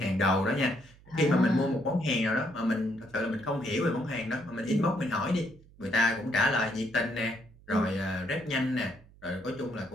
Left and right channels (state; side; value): noise; right; hum, 25 dB below the sound